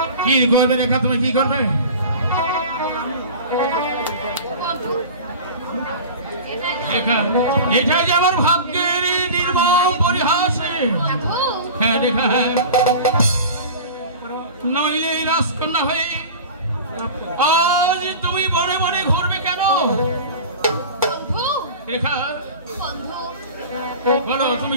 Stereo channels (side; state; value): both; inverted; correlation -0.35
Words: কি করবে রেখা, তুমি কি করবে? এটা যে আমার ভাগ্যের নির্মম পরিহাস। হ্যাঁ রেখা, নইলে রাজকন্যা হয়ে আজ তুমি বনে বনে ঘুরবে কেন? রেখা বলো, তুমি